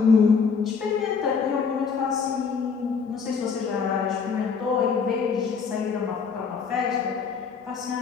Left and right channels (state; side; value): quieter; right; 5.7 dB